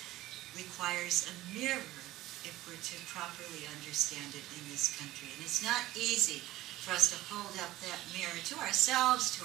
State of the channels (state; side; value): quieter; left; 16.5 dB